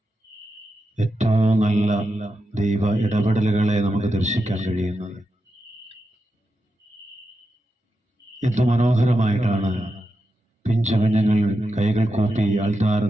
ഏറ്റവും നല്ല ദൈവ ഇടപെടലുകളെ നമുക്ക് ദർശിക്കാൻ കഴിയുന്നത്. എന്ത് മനോഹരമായിട്ടാണ് പിഞ്ചു കുഞ്ഞുങ്ങൾ കൈകൾ കൂപ്പി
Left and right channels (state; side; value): normal; both; correlation 0.88